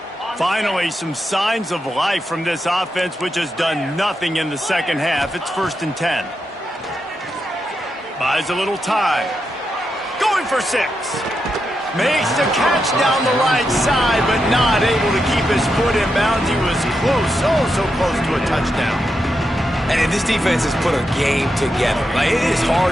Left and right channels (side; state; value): both; normal; correlation 0.85